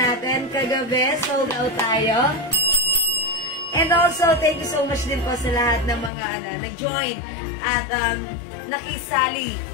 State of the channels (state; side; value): drops out; right; at 6.1 s